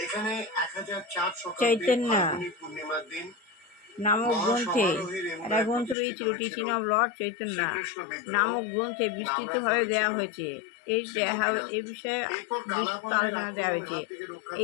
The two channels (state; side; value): drops out; right; at 6.0 s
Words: চৈতন্য নামক গ্রন্থে, একটা গ্রন্থ রয়েছিল টিচিং অফ লর্ড চৈতন্য নামক গ্রন্থে বিস্তৃতভাবে দেওয়া হয়েছে। এই বিষয়ে বিস্তৃত আলোচনা দেওয়া হয়েছে।